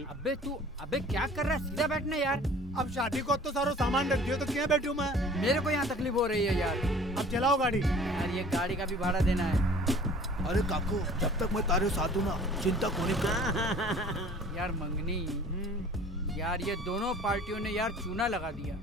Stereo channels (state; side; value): normal; both; correlation 0.49